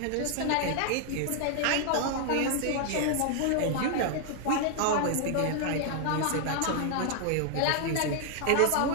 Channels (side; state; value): both; different; correlation 0.00